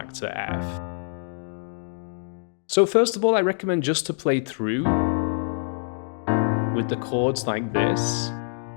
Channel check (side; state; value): right; silent; digital silence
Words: to F. So first of all, I recommend just to play through with the chords like this.